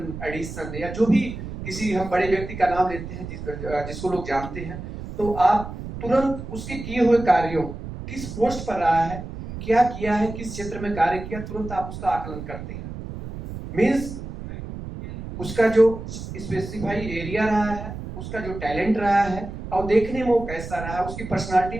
एडिसन, या जो भी किसी हम बड़े व्यक्ति का नाम लेते हैं जिसको लोग जानते हैं, तो आप तुरंत उसके किए हुए कार्यों, किस पोस्ट पर रहा है, क्या किया है, किस क्षेत्र में कार्य किया, तुरंत आप उसका आकलन करते हैं। मीन्स उसका जो स्पेसिफाई एरिया रहा है, उसका जो टैलेंट रहा है, और देखने में वो कैसा रहा है, उसकी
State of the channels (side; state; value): right; noise; rumble, 9 dB below the sound